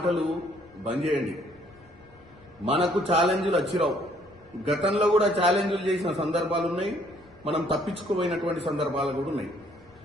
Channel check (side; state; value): left; noise; rumble, 28 dB below the sound